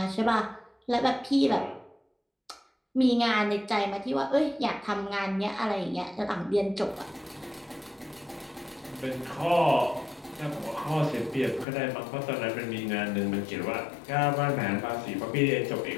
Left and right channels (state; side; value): drops out; right; at 11.7 s